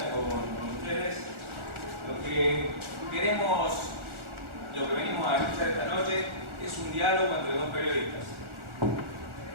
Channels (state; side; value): late; left; 1.4 ms